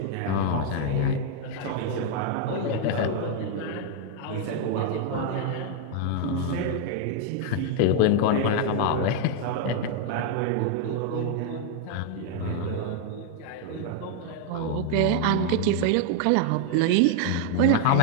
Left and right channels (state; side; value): different; both; correlation 0.00